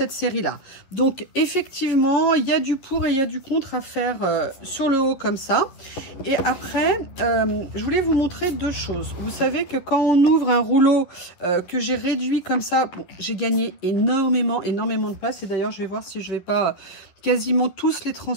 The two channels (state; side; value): late; right; 11 ms